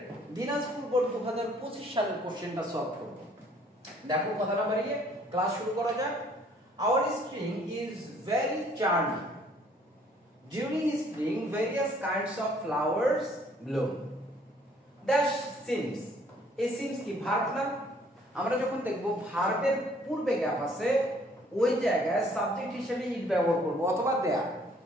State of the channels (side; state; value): both; normal; correlation 0.61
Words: দিনাজপুর বোর্ড 2025 সালের কোশ্চেনটা সলভ করব। দেখো কথা না বাড়িয়ে ক্লাস শুরু করা যাক। Our string is very charming. During spring, various kinds of flowers bloom. Dash seems. এই seems কি ভার্ব না? আমরা যখন দেখব ভার্বের পূর্বে গ্যাপ আছে, ওই জায়গায় সাবজেক্ট হিসেবে ইট ব্যবহার করব অথবা দেয়ার।